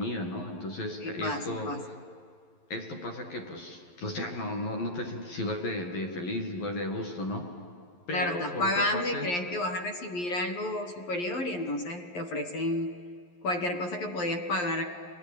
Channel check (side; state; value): right; late; 11 ms